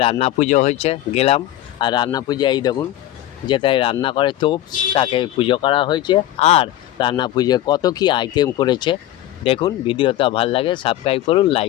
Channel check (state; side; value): quieter; right; 13.6 dB